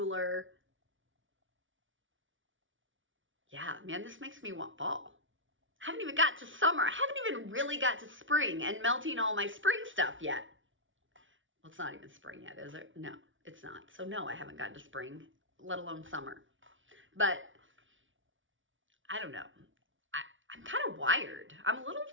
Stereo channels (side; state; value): left; late; 0.56 ms